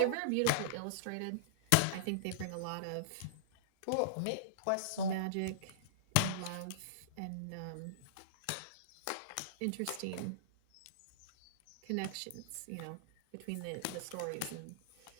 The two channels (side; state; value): both; different; correlation -0.02